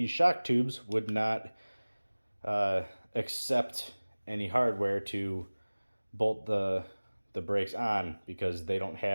shock tubes would not accept any hardware to bolt the brakes on, because they don't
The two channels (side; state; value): both; inverted; correlation -1.00